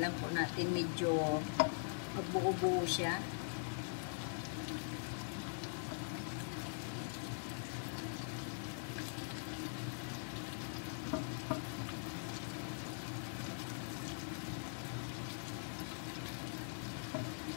lang po natin medyo magbuo-buo siya.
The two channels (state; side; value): silent; right; digital silence